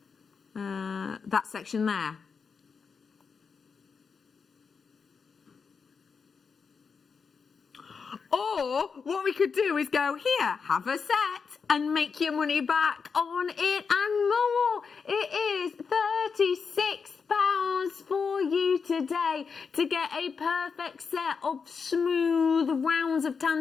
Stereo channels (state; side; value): quieter; right; 5.6 dB